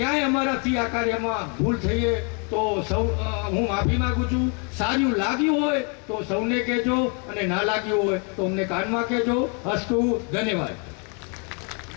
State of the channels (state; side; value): quieter; right; 36.9 dB